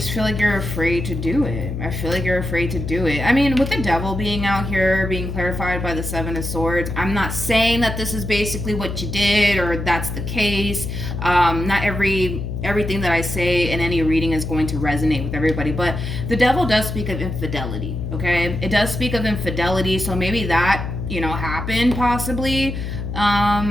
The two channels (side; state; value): left; noise; hum, 5 dB below the sound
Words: feel like you're afraid to do it. I feel like you're afraid to do it. I mean, with the Devil being out here, being clarified by the 7 of Swords, I'm not saying that this is basically what you did or that's the case. Not everything that I say in any reading is going to resonate with everybody, but the Devil does speak of infidelity, okay? It does speak of infidelity, so maybe that, you know, happened possibly.